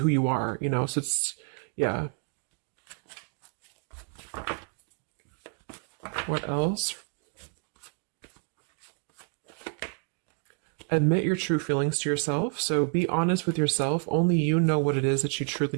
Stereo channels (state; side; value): quieter; left; 38.6 dB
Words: you are, so it's, yeah. What else? Admit your true feelings to yourself. So be honest with yourself. Only you know what it is that you truly